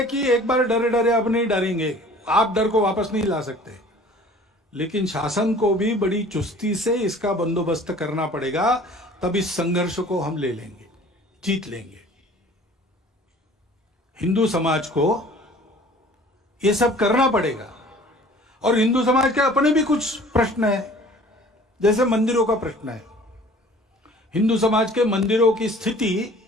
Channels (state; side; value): normal; both; correlation 0.49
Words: कि एक बार डरे डरे अब नहीं डरेंगे, आप डर को वापस नहीं ला सकते। लेकिन शासन को भी बड़ी चुस्ती से इसका बंदोबस्त करना पड़ेगा, तब इस संघर्ष को हम ले लेंगे, जीत लेंगे। हिंदू समाज को ये सब करना पड़ेगा। और हिंदू समाज के अपने भी कुछ प्रश्न है, जैसे मंदिरों का प्रश्न है। हिंदू समाज के मंदिरों की स्थिति